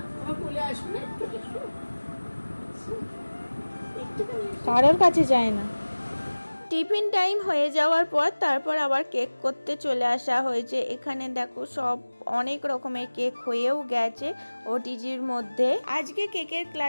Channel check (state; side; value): inverted; both; correlation -1.00